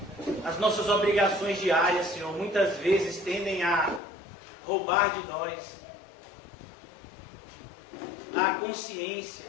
nossas obrigações diárias, Senhor, muitas vezes tendem a roubar de nós a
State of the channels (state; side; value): drops out; right; at 4.0 s